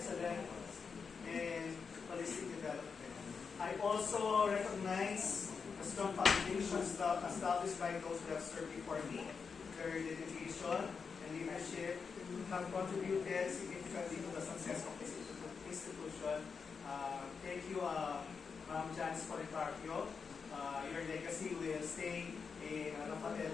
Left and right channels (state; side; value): quieter; right; 5.6 dB